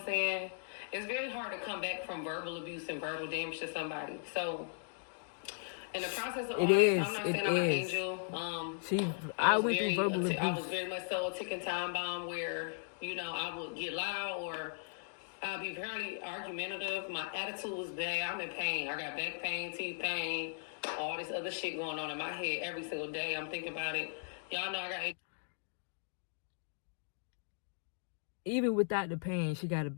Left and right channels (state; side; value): silent; right; digital silence